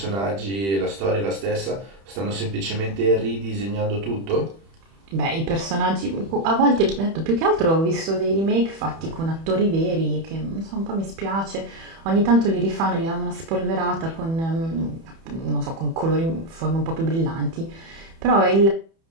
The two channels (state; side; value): late; left; 31 ms